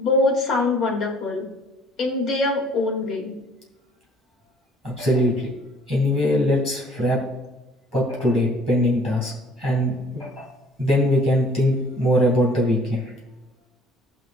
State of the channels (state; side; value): normal; both; correlation 0.55